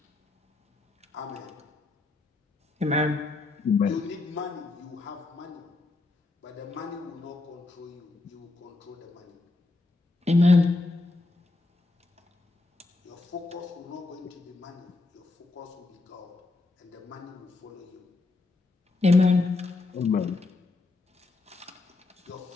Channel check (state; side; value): quieter; right; 3.3 dB